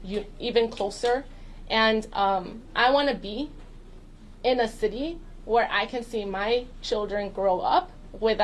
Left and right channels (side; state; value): both; identical; correlation 1.00